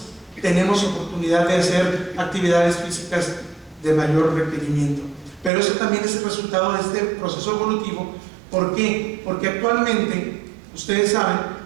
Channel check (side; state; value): left; drops out; at 5.5 s